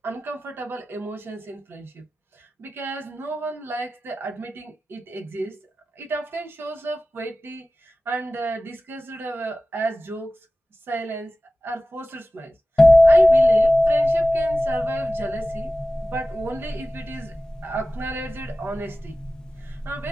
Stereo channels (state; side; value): normal; both; correlation 0.96